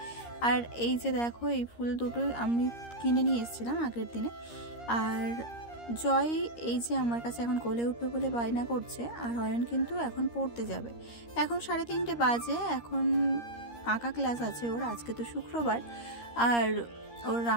আর এই যে দেখো, এই ফুল দুটো আমি কিনে নিয়ে এসেছিলাম আগের দিনে। আর জয় এই যে আমার কাছে এখন কোলে উঠবে বলে বায়না করছে, আর অয়ন কিন্তু এখন পড়তে যাবে। এখন 3:30 বাজে, এখন আঁকা ক্লাস আছে ওর, আজকে তো শুক্রবার। আর ওর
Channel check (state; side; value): late; right; 13 ms